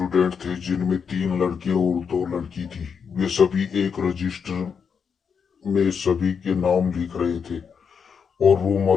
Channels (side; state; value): right; quieter; 6.5 dB